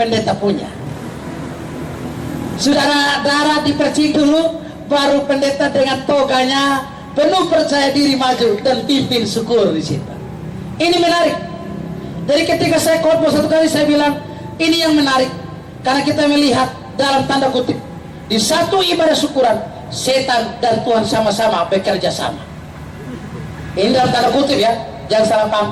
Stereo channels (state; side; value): identical; both; correlation 1.00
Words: punya. Saudara, darah dipercik dulu, baru pendeta dengan toganya penuh percaya diri maju dan pimpin syukur di situ. Ini menarik. Jadi ketika saya khotbah satu kali saya bilang ini yang menarik, karena kita melihat dalam tanda kutip di satu ibadah syukuran setan dan Tuhan sama-sama bekerja sama. Ini dalam tanda kutip ya, jangan salah paham